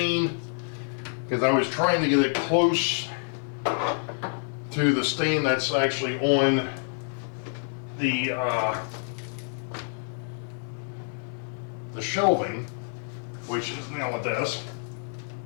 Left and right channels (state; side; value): silent; right; 60 dB below the other